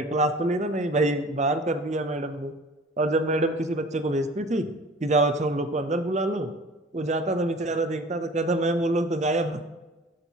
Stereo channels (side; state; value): both; normal; correlation 0.44